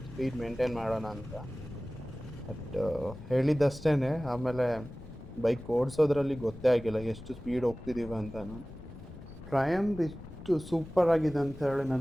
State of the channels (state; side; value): noise; left; rumble, 16 dB below the sound